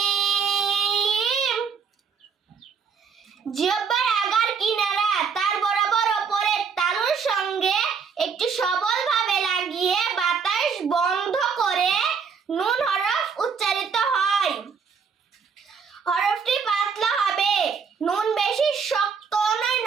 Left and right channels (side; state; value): left; quieter; 6.0 dB